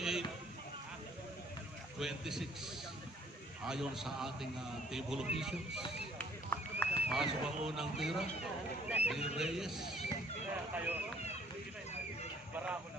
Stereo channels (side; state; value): both; normal; correlation 0.59